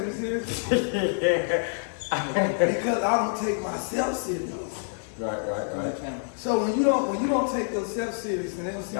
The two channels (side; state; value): right; silent; digital silence